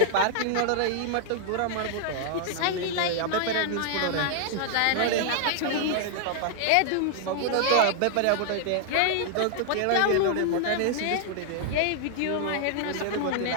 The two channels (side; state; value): both; different; correlation 0.00